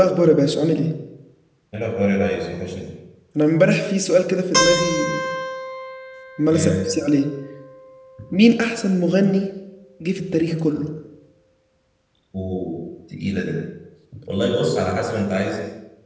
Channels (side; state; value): both; identical; correlation 1.00